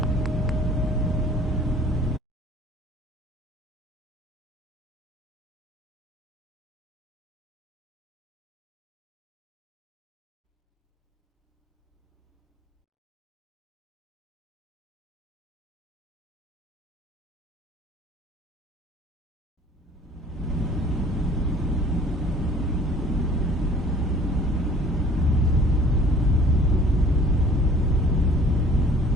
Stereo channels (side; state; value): both; normal; correlation 0.52